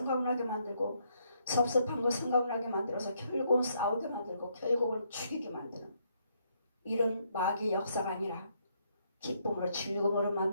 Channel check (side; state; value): both; inverted; correlation -0.73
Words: 만들고 섭섭한 거 생각나게 만들어서 결국은 싸우게 만들고 결국은 죽이게 만드는 이런 마귀의 역사가 아니라 기쁨으로 즐거움으로